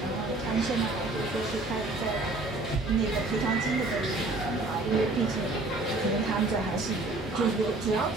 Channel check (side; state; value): left; quieter; 3.0 dB